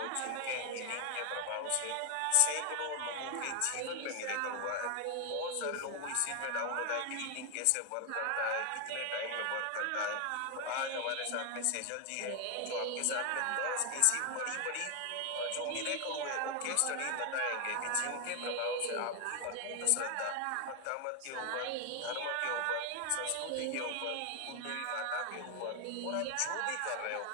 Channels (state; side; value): different; both; correlation 0.01